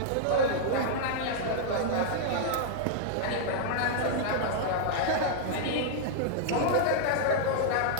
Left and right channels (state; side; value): different; both; correlation -0.01